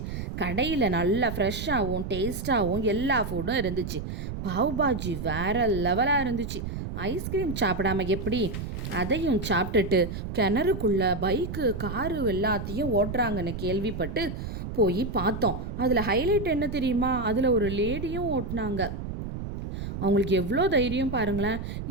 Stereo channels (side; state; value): right; noise; rumble, 6 dB below the sound